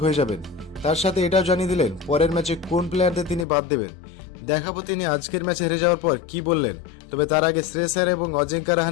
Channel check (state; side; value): drops out; right; at 3.5 s